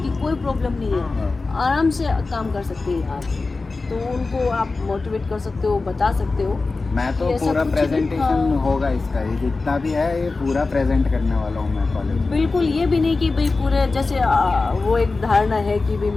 की कोई प्रॉब्लम नहीं है, हाँ। आराम से काम कर सकते हैं आप। तो उनको आप मोटिवेट कर सकते हो, बता सकते हो। मैं तो ये ऐसा पूरा कुछ नहीं, प्रेजेंटेशन हाँ। होगा इसका, ये जितना भी है ये पूरा प्रेजेंट करने वाला हूँ मैं कॉलेज में। बिल्कुल, ये भी नहीं कि भाई पूरे जैसे वो एक धारणा है कि भाई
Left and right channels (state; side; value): quieter; right; 3.7 dB